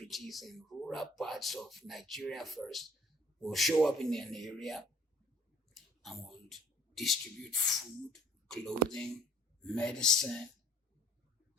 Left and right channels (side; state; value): both; normal; correlation 0.55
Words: in rural parts of Nigeria first. We'll show up in an area and we'll distribute food, clothing, medicine